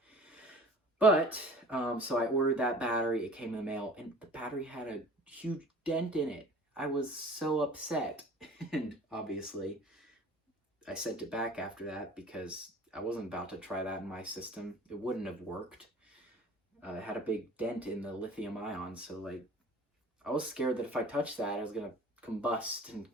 But, so I ordered that battery, it came in the mail, and the battery had a huge dent in it. I was so upset, and obviously I sent it back after that, because I wasn't about to try that in my system. It wouldn't have worked. It had a big dent in the lithium ion, so like, I was scared that if I touched that, it was gonna combust and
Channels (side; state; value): both; normal; correlation 0.45